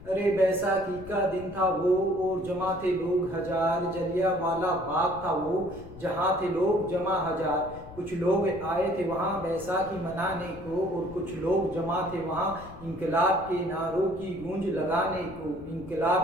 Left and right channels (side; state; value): left; noise; rumble, 17 dB below the sound